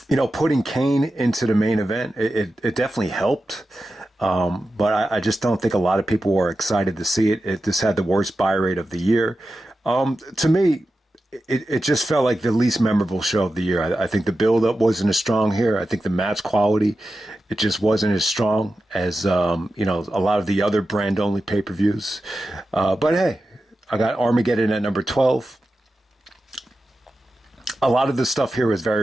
putting Kane into the main event, it definitely helped. But I just don't think a lot of people were excited to see it. It just had the worst buy rate of the year. To me, it just felt like the least memorable show of the year. I think the build-up wasn't as strong here. I think the match quality, it just wasn't as strong as, a lot of the other brand-only pay-per-views. But hey, I got Armageddon at number 12. A lot of the stuff here was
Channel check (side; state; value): both; normal; correlation 0.92